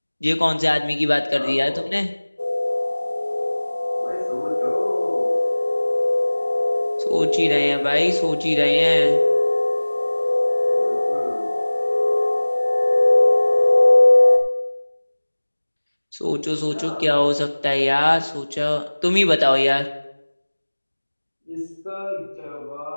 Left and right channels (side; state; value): both; inverted; correlation -1.00